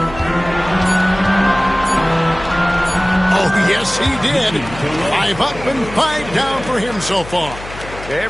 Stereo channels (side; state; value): left; noise; hum, 14 dB below the sound